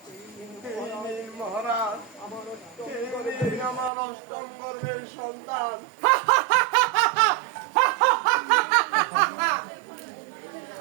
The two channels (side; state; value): left; drops out; at 3.9 s